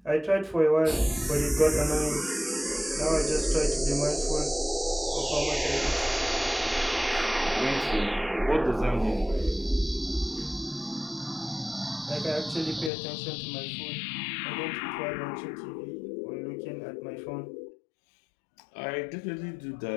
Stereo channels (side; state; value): right; drops out; at 12.9 s